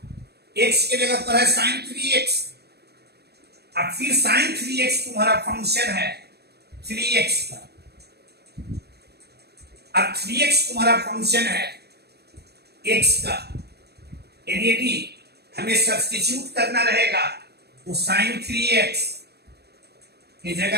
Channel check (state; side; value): late; left; 0.47 ms